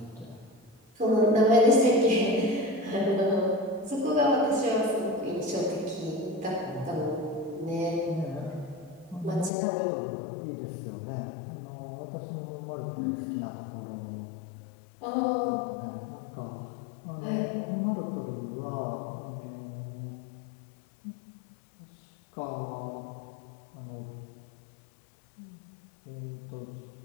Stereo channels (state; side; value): drops out; right; at 9.5 s